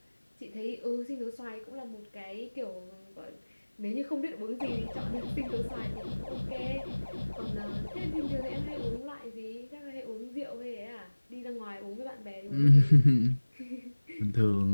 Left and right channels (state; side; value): inverted; both; correlation -1.00